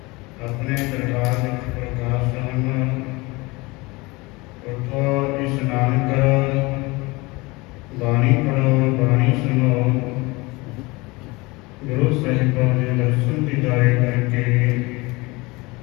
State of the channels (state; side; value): quieter; right; 23.9 dB